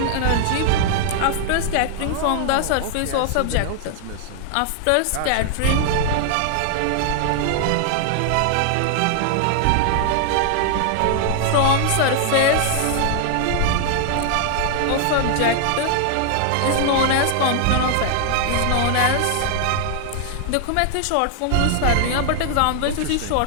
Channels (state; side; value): different; both; correlation 0.00